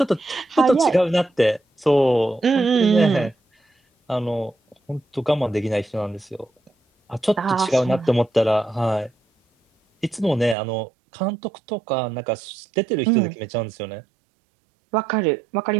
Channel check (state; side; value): drops out; left; at 10.6 s